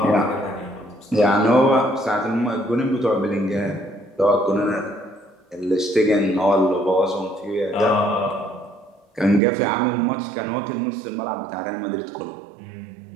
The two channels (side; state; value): left; drops out; at 9.4 s